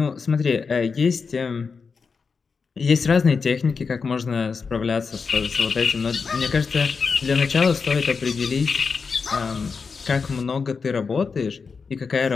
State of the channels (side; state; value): right; quieter; 5.2 dB